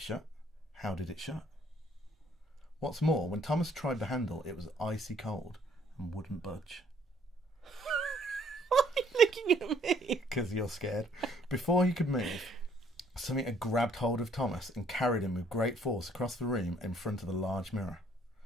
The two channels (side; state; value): both; normal; correlation 0.63